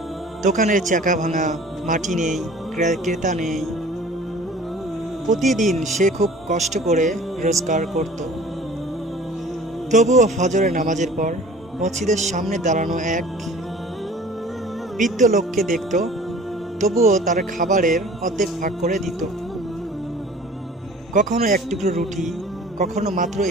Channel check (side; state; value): both; normal; correlation 0.47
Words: দোকানের চাকা ভাঙা, মাটি নেই, ক্রেতা নেই। প্রতিদিন সে খুব কষ্ট করে রোজগার করত। তবুও ফজরের নামাজের পর মসজিদের সামনে দাঁড়ানো এক বৃদ্ধ লোককে দেখত, তবুও তার খাবারের অর্ধেক ভাগ করে দিত। কখনো এক টুকরো রুটি, কখনো মাত্র